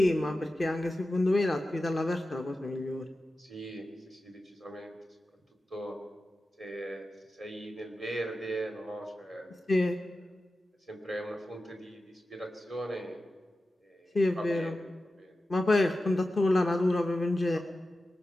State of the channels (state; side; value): normal; both; correlation 0.93